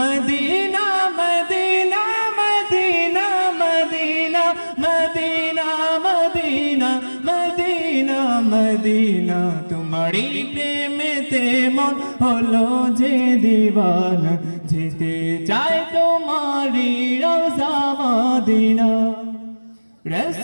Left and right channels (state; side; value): inverted; both; correlation -1.00